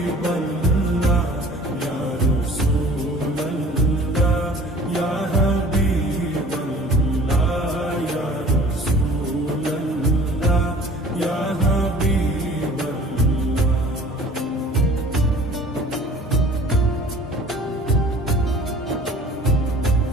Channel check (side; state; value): both; normal; correlation 0.48